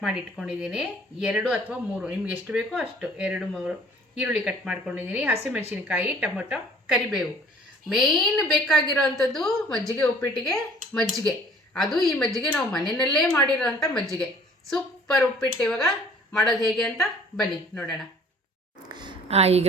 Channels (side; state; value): both; normal; correlation 0.53